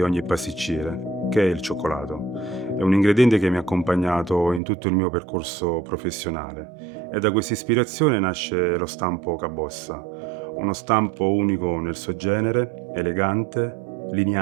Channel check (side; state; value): left; drops out; at 4.6 s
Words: ogni pasticcere, che è il cioccolato. È un ingrediente che mi ha accompagnato in tutto il mio percorso professionale e da questa ispirazione nasce lo stampo Cabossa, uno stampo unico nel suo genere, elegante,